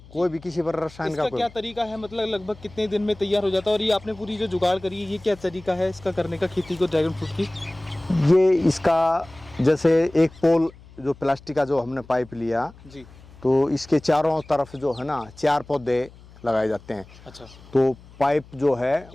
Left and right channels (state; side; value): noise; left; hum, 22 dB below the sound